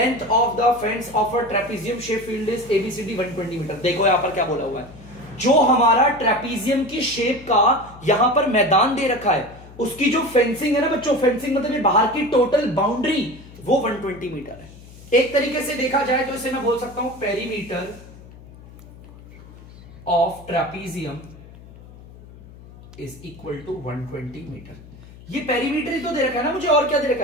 of the fence of a trapezium shape field is ABCD 120 metre. देखो यहां पर क्या बोला हुआ है, जो हमारा ट्रेपीजियम की शेप का यहां पर मैदान दे रखा है, उसकी जो फेंसिंग है ना बच्चों, फेंसिंग मतलब ये बाहर की टोटल बाउंड्री, वो 120 मीटर है। एक तरीके से देखा जाए तो इसे मैं बोल सकता हूं perimeter of trapezium is equal to 120 metre. ये पेरीमीटर ही तो दे रखा है ना मुझे, और क्या दे रखा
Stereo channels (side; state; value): left; noise; hum, 19 dB below the sound